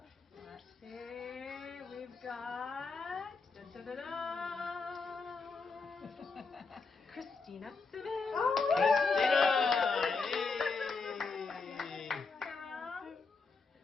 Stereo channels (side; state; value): right; quieter; 4.5 dB